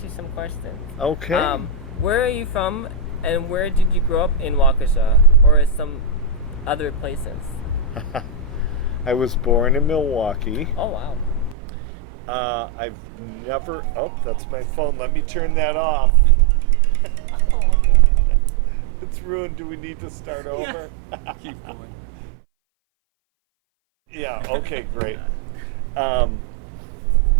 you some questions. Okay. Where are you from, and where did you grow up in Waukesha, or some other places? I was born in Milwaukee. Oh, wow. I've never... Oh, that's my phone. Let me turn that off. Oh, no. It's ruined. Do we need to start over? Keep going. Yeah, okay, great. Got it.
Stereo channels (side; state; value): left; drops out; at 11.6 s